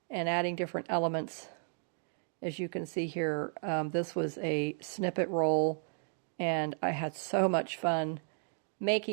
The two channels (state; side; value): silent; left; 55 dB below the other